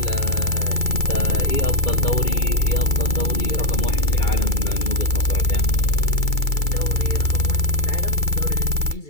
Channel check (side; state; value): right; late; 2.3 ms